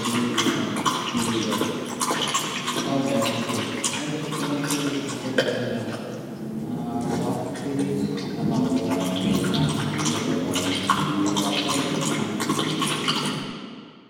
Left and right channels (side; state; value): both; identical; correlation 1.00